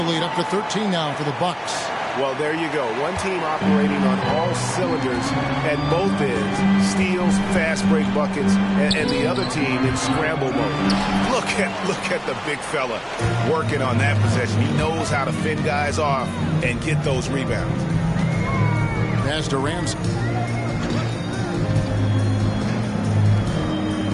lead up to 13 now for the Bucks. Well, there you go. One team operating on all cylinders at both ends. Steals, fast break buckets, and the other team in scramble mode. Look at the big fella working on that possession. He knows how to fend guys off and get those rebounds. Pass to Ramsey.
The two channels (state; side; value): identical; both; correlation 1.00